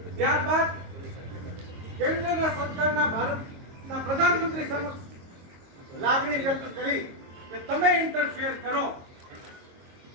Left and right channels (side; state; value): left; late; 22 ms